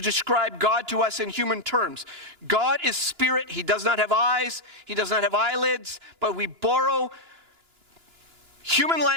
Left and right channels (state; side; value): late; left; 2.9 ms